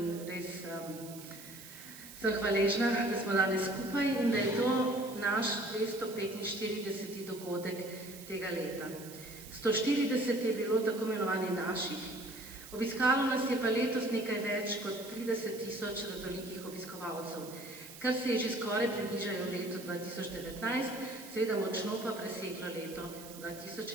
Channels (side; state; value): right; noise; hiss, 15 dB below the sound